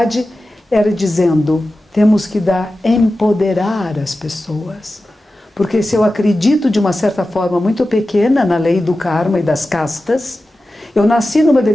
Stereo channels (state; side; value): normal; both; correlation 0.94